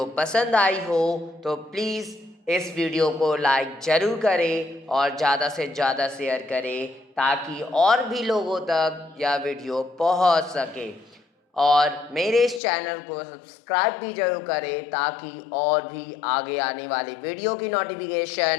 पसंद आई हो तो प्लीज़ इस वीडियो को लाइक ज़रूर करें और ज़्यादा से ज़्यादा शेयर करें ताकि और भी लोगों तक यह वीडियो पहुंच सके। और मेरे इस चैनल को सब्सक्राइब भी जरूर करें ताकि और भी आगे आने वाली वीडियो की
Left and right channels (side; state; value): right; drops out; at 12.6 s